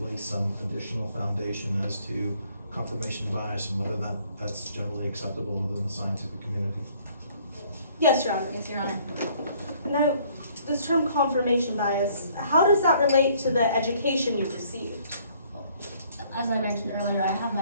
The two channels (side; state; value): both; inverted; correlation -0.61